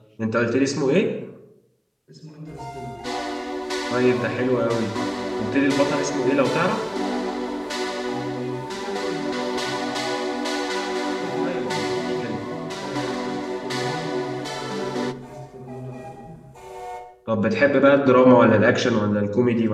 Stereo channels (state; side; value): identical; both; correlation 1.00